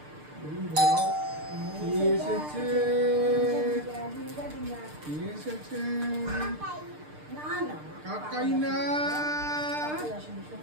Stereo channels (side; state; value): left; late; 6.7 ms